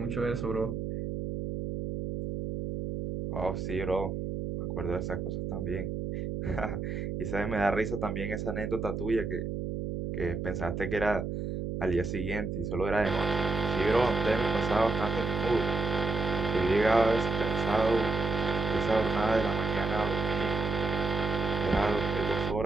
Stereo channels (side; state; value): right; noise; hum, 3 dB below the sound